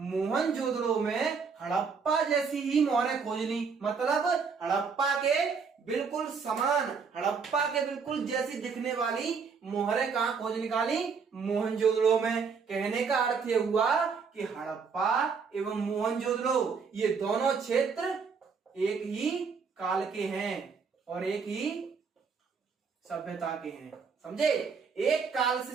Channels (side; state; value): left; quieter; 5.6 dB